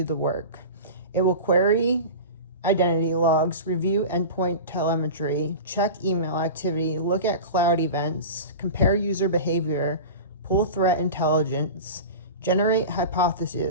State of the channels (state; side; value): inverted; both; correlation -0.30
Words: the work. It will query identity logs, review endpoint telemetry, check email activity, look at cloud events, compare user behavior, pull threat intelligence, generate